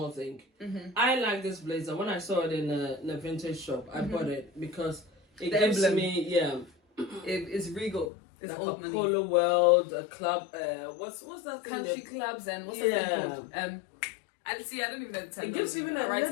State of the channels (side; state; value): right; drops out; at 8.1 s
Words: thing. I like this blazer. When I saw it in a vintage shop, I bought it because it The gives emblem. me It's regal. It's like old a money. polo world, a club. What's that thing? Country clubs and what's that thing called? And see, I don't even know the term. It gives even a